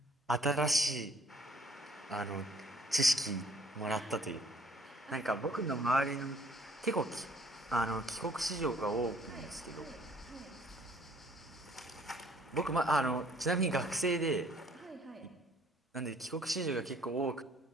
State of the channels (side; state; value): both; normal; correlation 0.59